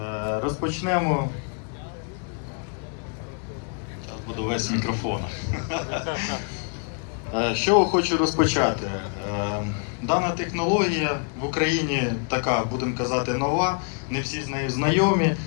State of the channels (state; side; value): quieter; right; 38.4 dB